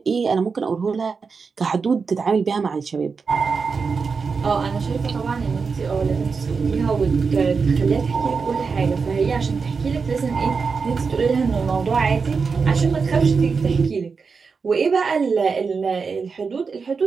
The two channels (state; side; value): quieter; left; 5.1 dB